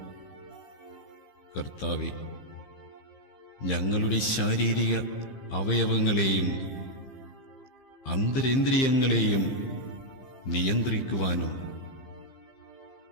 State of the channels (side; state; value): right; late; 15 ms